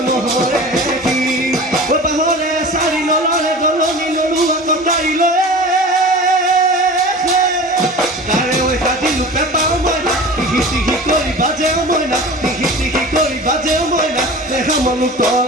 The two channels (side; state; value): both; normal; correlation 0.36